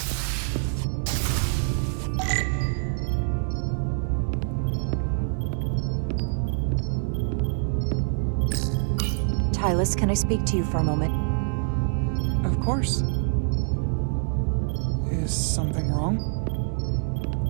Tylus, can I speak to you for a moment? Of course. Is something wrong?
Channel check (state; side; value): silent; left; 61 dB below the other